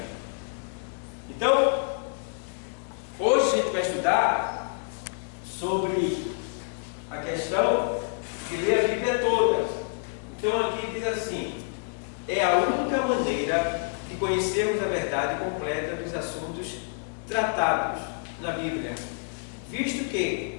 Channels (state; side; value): silent; right; digital silence